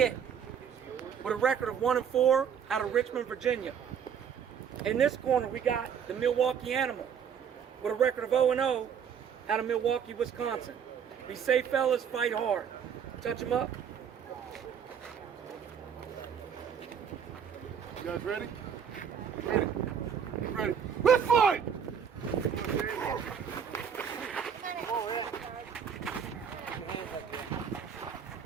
with a record of 1-4 out of Richmond, Virginia. In this corner, we got the Milwaukee Animal with a record of 0-0 out of Milwaukee, Wisconsin. Be safe, fellas. Fight hard. Touch them up. You guys ready? Ready. Ready. Let's fight!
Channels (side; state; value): left; quieter; 7.6 dB